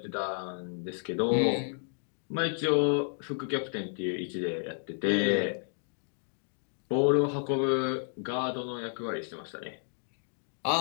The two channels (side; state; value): right; silent; 57 dB below the other